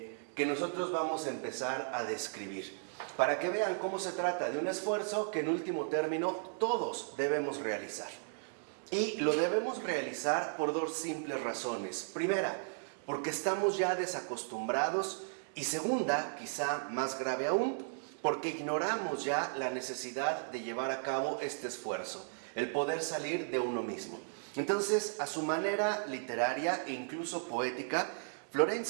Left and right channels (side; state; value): left; silent; digital silence